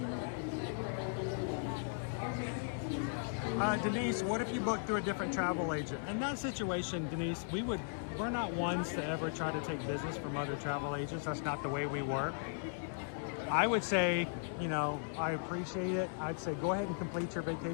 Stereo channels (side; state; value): right; silent; digital silence